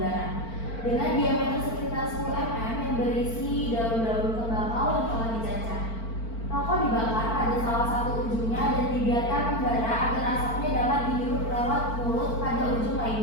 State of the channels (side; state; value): right; late; 4.4 ms